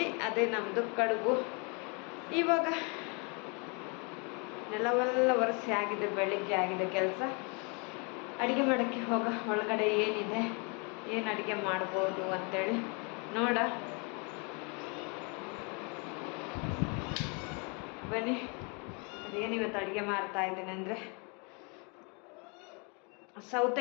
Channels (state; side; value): quieter; right; 33.1 dB